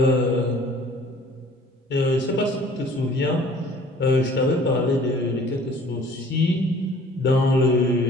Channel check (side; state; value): both; normal; correlation 0.52